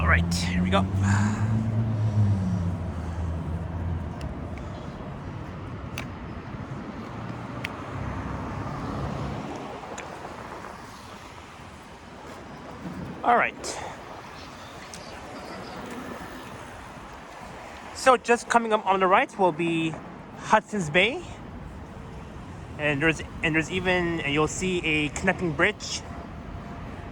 right, here we go. All right. So just coming up on the right will be Hudson's Bay, and there's even, and you'll see a connecting bridge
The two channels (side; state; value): both; identical; correlation 1.00